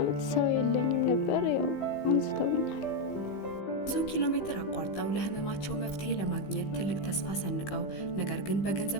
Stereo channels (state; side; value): late; right; 15 ms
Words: ሰው የለኝም ነበር። ያው አንስተውኛል። ብዙ ኪሎ ሜትር አቋርጠው ለህመማቸው መፍትሄ ለማግኘት ትልቅ ተስፋ ሰንቀው ነገር ግን